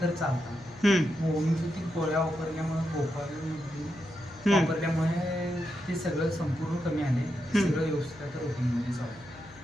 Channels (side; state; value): left; noise; hum, 21 dB below the sound